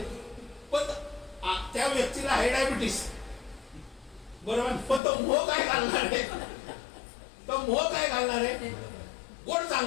पण त्या व्यक्तीला आहे डायबिटीस, बरोबर? पण तो मोह काय घालणार आहे? तो मोह काय घालणार आहे? गोड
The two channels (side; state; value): right; drops out; at 5.0 s